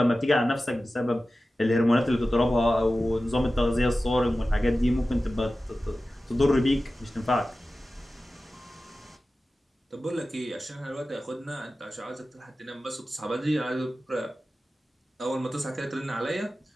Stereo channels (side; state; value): both; normal; correlation 0.95